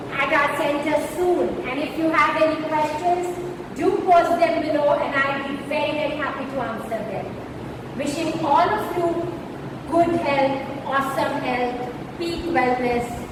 at our center soon, and if you have any questions, do post them below and I'll be very, very happy to answer them. Wishing all of you good health, awesome health, peak wellness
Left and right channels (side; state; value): both; identical; correlation 1.00